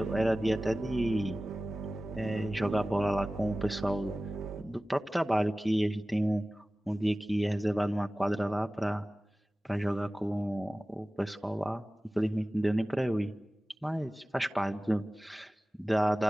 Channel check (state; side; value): normal; both; correlation 0.97